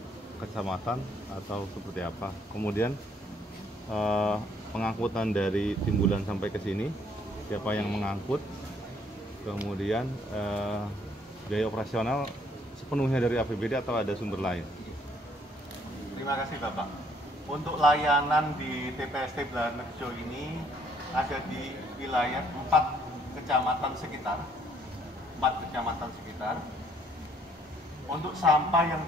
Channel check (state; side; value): normal; both; correlation 0.65